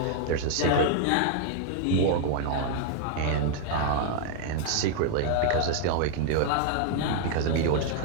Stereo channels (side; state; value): both; different; correlation 0.00